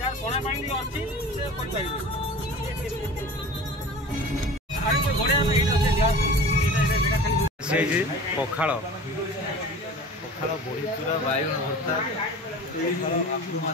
कोना पानी अछि से कोन पाइबे। आरे कोई घोड़े में एटा से ग्लास एटा जगह खाली से जी पखाल पखाल बड़ी चूरा बाइगण भर्ता आलू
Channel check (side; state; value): both; normal; correlation 0.38